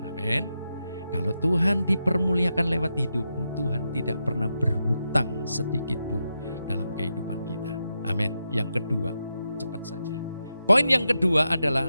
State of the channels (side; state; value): both; inverted; correlation -0.87